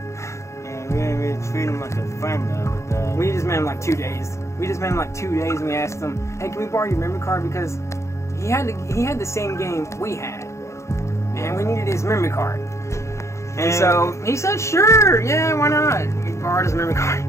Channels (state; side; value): late; right; 0.14 ms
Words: And we didn't really treat him like a friend though. But we just met him 2 days. And we asked him, hey, can we borrow your memory card, because he had the same game we had, and we needed his memory card. And so he said, sure, yeah, why not? We borrowed his memory card.